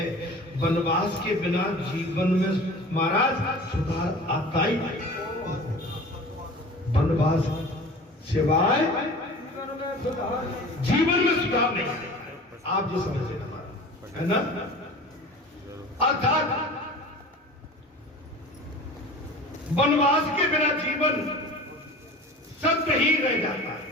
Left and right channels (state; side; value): normal; both; correlation 0.39